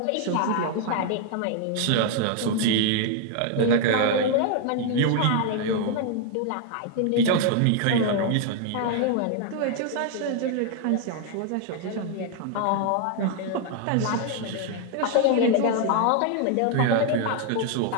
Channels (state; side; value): different; both; correlation 0.00